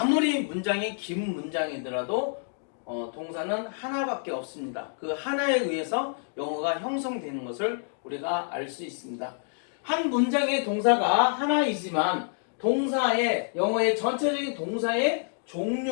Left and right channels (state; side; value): silent; right; 59 dB below the other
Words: 문장이 긴 문장이더라도 동사는 하나밖에 없습니다. 그 하나에 의해서 영어가 형성되는 것을 우리가 알 수 있습니다. 한 문장의 동사가 하나이지만 영어의 전체적인 동사의